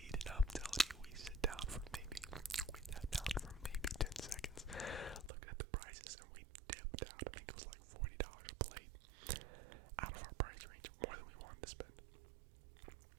I'm telling you, we sat down for maybe 10 seconds, looking at the prices, and we dipped out. I think it was like $40 a plate, out of our price range, more than we wanted to spend.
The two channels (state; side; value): drops out; left; at 5.3 s